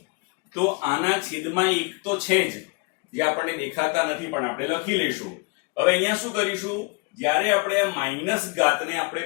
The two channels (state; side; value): quieter; right; 31.1 dB